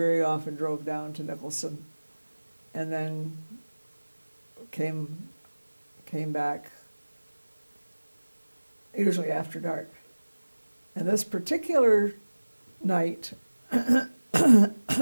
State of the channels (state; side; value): inverted; both; correlation -1.00